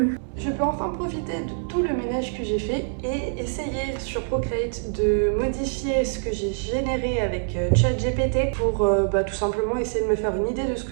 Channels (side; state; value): left; silent; digital silence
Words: Je peux enfin profiter de tout le ménage que j'ai fait et essayer sur Procreate de modifier ce que j'ai généré avec ChatGPT pour tout simplement essayer de me faire une idée de ce